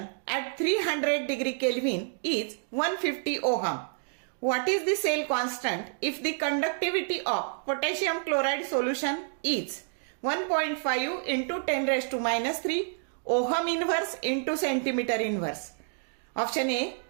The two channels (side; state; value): left; silent; 59 dB below the other